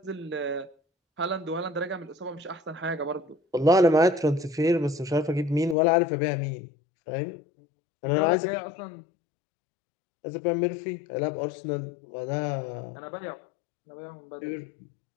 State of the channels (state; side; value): drops out; right; at 5.8 s